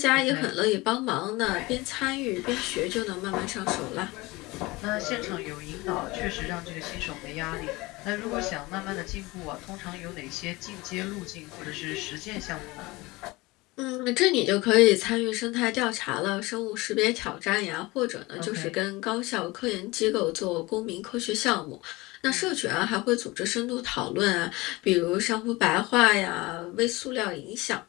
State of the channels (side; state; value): right; quieter; 22.1 dB